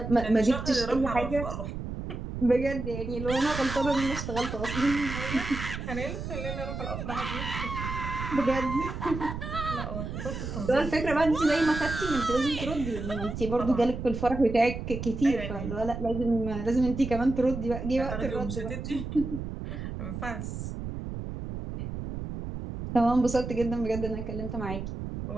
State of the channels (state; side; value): noise; right; rumble, 6 dB below the sound